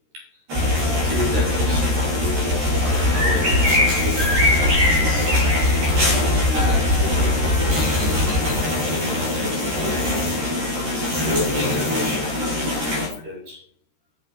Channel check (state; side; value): late; left; 13 ms